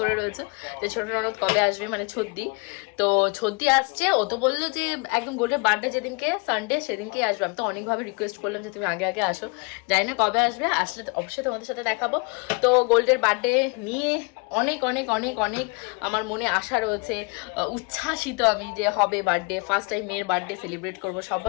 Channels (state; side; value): quieter; right; 31.3 dB